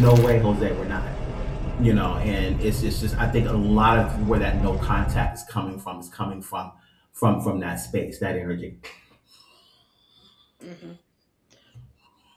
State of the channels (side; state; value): both; identical; correlation 1.00